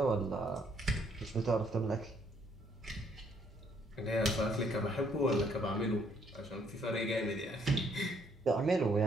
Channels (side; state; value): both; normal; correlation 0.68